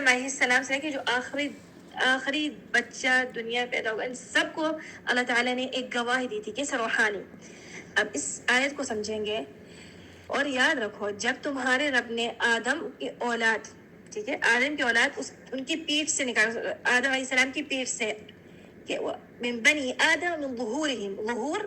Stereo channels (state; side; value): identical; both; correlation 1.00